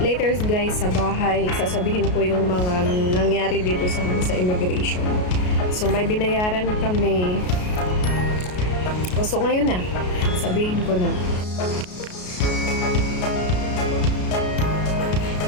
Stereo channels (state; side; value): late; right; 33 ms